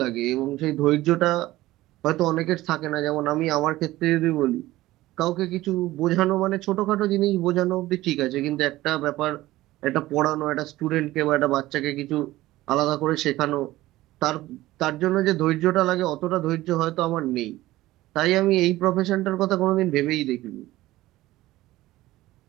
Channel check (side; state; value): left; quieter; 16.9 dB